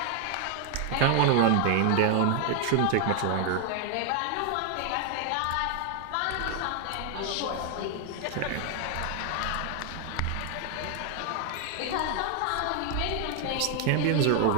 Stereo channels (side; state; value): both; different; correlation 0.00